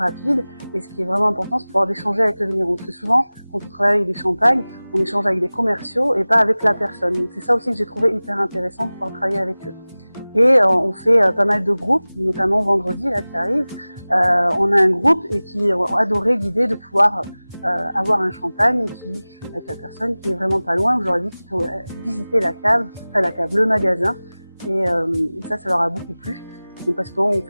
Et ce qui est vraiment important, c'est de pouvoir échanger avec le vigneron. Parce que souvent, quand on travaille avec des champagnes, on échange avec des commerciaux et pas avec la personne. Donc c'est ça aussi que j'ai trouvé hyper intéressant de pouvoir travailler avec eux. Et on fait pas mal de groupes, notamment vendredi là qui arrive. On a un groupe et qui ont adoré l'idée de pouvoir avoir un champagne avec la personne qui est vraiment pas loin. J'aurais dit qu'il faut visiter la cave, le magasin. Et ça leur a beaucoup plu. Donc parce qu'on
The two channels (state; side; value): inverted; both; correlation -0.99